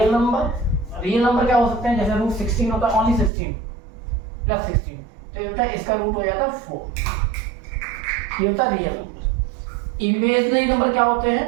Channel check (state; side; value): drops out; left; at 3.3 s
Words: नंबर। रियल नंबर क्या हो सकते हैं? जैसे रूट 16 होता है, ओनली 16 प्लस 16, तो ये होता है इसका रूट हो जाता है 4। ये होता है रियल नंबर। इमेजिनरी नंबर क्या होते